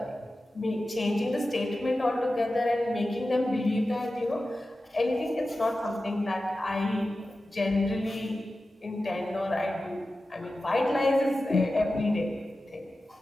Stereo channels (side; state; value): both; normal; correlation 0.94